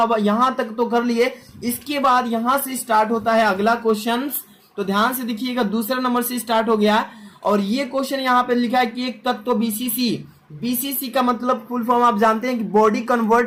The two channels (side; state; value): both; identical; correlation 1.00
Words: यहां तक तो कर लिए। इसके बाद यहां से स्टार्ट होता है अगला क्वेश्चन। तो ध्यान से देखिएगा, दूसरा नंबर से स्टार्ट हो गया और ये क्वेश्चन यहाँ पे लिखा है कि एक तत्व बीसीसी का मतलब फुल फॉर्म आप जानते हैं कि बॉडी